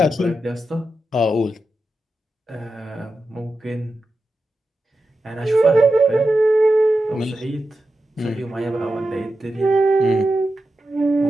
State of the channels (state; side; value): normal; both; correlation 0.90